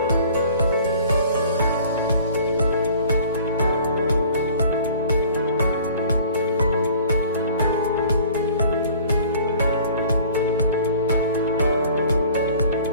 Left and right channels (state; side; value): inverted; both; correlation -0.49